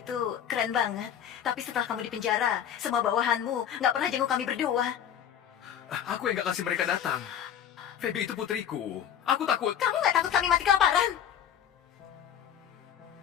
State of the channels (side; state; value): right; quieter; 9.3 dB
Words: keren banget. Tapi setelah kamu di penjara, semua bawahanmu nggak pernah jenguk kami berdua. Aku yang gak kasih mereka datang. Feby itu putriku. Aku takut. Kamu nggak takut kami mati kelaparan?